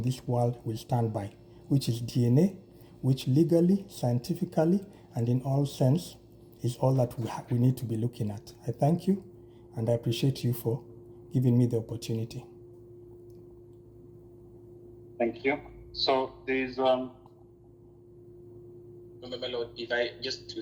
this world will stand by, which is DNA, which legally, scientifically, and in all sense is all that we need to be looking at. I thank you, and I appreciate you for giving me the opportunity. Thank you. So there is my lord, if I just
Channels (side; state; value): both; identical; correlation 1.00